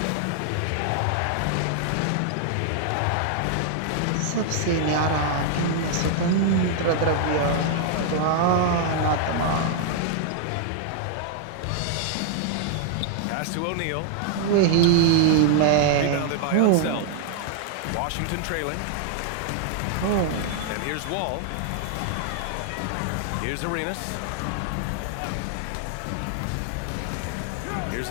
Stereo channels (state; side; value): different; both; correlation 0.00